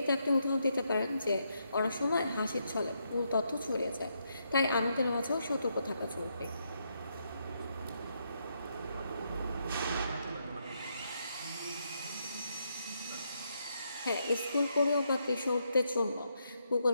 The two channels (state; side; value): inverted; both; correlation -0.79